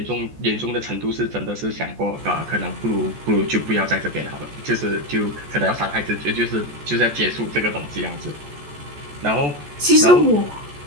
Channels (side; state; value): left; late; 14 ms